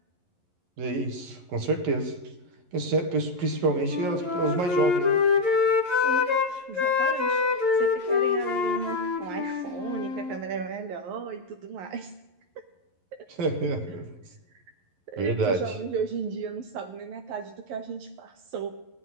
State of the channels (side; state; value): left; late; 11 ms